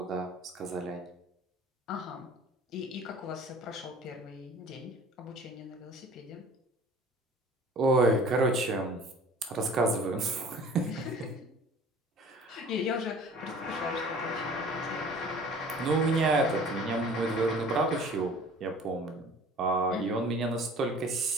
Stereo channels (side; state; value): both; normal; correlation 0.47